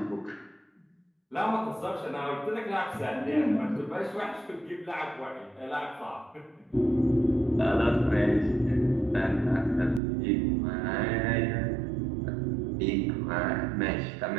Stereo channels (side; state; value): left; drops out; at 10.0 s